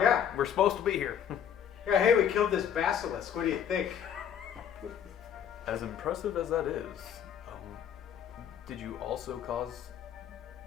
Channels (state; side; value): quieter; right; 8.8 dB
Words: We're supposed to be here. Yeah, hey, we killed this basilisk. What do you think? As impressive as that is, did you also cause